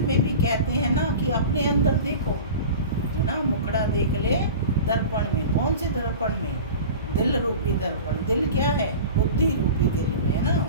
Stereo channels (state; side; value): inverted; both; correlation -0.35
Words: भी कहते हैं ना कि अपने अंदर देखो, है ना, मुखड़ा देख ले दर्पण में। कौन से दर्पण में? दिल रूपी दर्पण। दिल क्या है? बुद्धि रूपी दिल में, है ना।